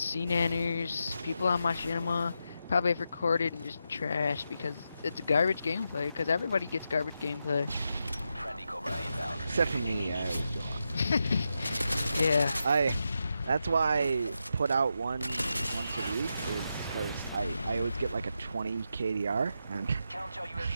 people on Machinima probably have recorded and just trashed because it's garbage gameplay, because everybody gets garbage gameplay. Except for me, I always do. Yeah. That's why I put out once a week, is because I always get like a 20 KDR, and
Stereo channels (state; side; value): inverted; both; correlation -0.86